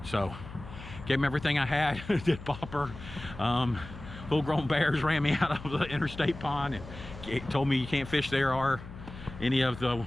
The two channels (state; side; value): noise; left; hum, 14 dB below the sound